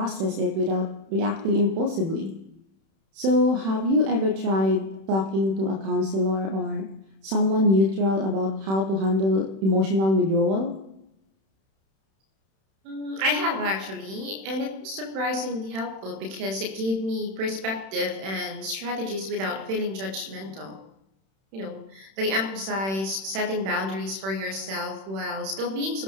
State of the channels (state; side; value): late; left; 31 ms